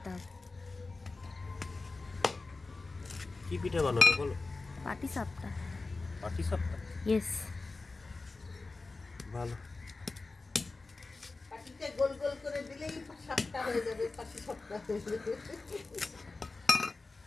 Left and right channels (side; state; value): right; quieter; 3.6 dB